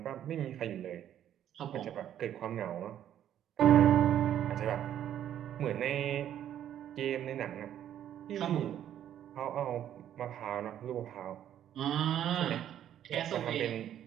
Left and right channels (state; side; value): quieter; left; 10.7 dB